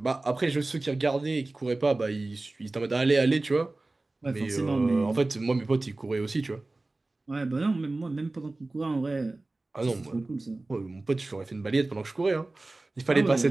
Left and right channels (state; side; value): quieter; left; 3.1 dB